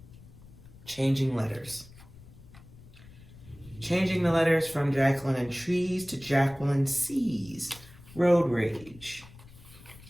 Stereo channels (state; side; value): noise; left; rumble, 20 dB below the sound